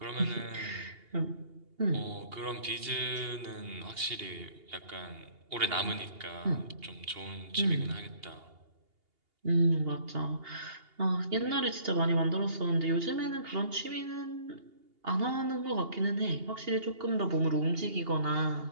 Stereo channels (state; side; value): late; left; 2.8 ms